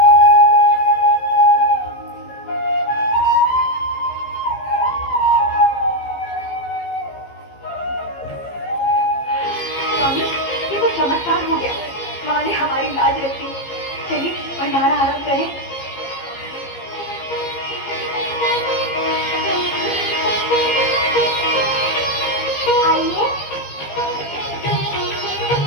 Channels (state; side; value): late; right; 15 ms